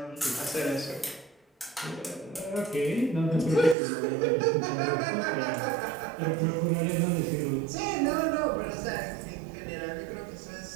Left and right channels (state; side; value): drops out; left; at 3.8 s